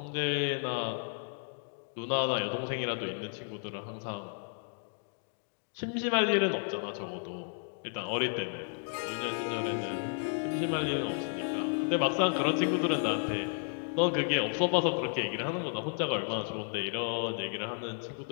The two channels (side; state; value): right; silent; 56 dB below the other